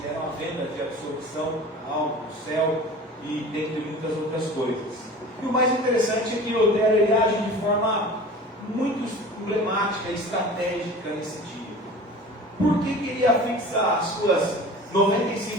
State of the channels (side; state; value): both; normal; correlation 0.39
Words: eram a venda de absolvição da alma, do céu, e dentre muitas outras coisas. E o mais interessante é que Lutero ele age de forma muito emblemática e estratégica nesse dia. Por que queria fixar as suas